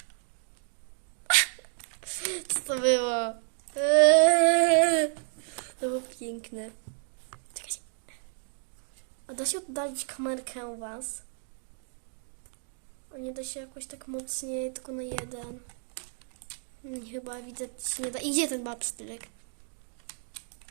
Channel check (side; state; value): left; silent; 57 dB below the other